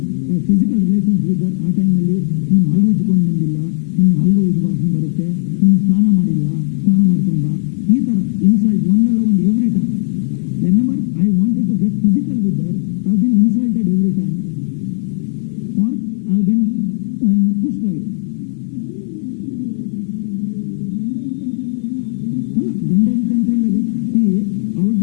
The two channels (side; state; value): right; silent; 63 dB below the other